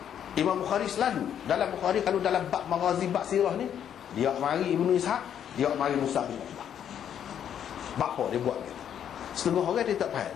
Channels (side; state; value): right; quieter; 9.3 dB